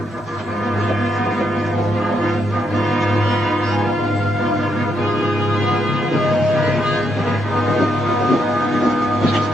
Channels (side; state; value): both; normal; correlation 0.78